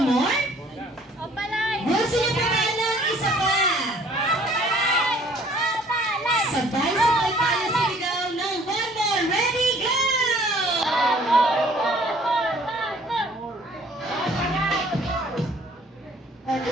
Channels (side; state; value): both; normal; correlation 0.56